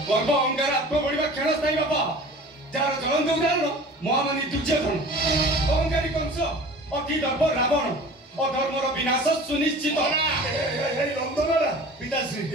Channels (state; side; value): normal; both; correlation 0.42